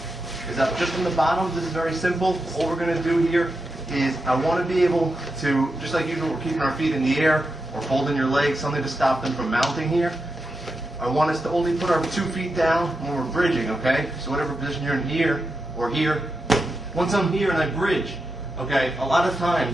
is that just from the bottom, this is very simple. All we're gonna do here is I wanna be able to, just like usual, we're keeping our feet in the air or folding your legs, something to stop them from mounting here. I want us to only put our 2 feet down when we're bridging, okay? So whatever position you're in here or here, once I'm here and I bridge, okay, a lot of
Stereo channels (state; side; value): normal; both; correlation 0.87